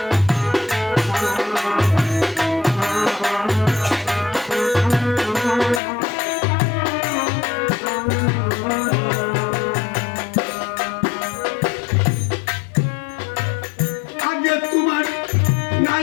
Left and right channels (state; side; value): drops out; right; at 5.8 s